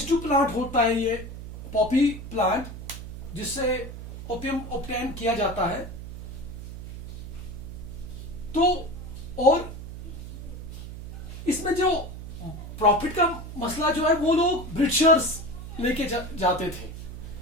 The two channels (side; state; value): right; noise; hum, 10 dB below the sound